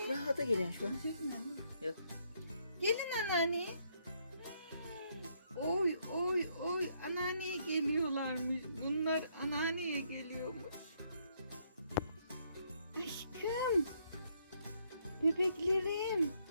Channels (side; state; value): both; inverted; correlation -0.72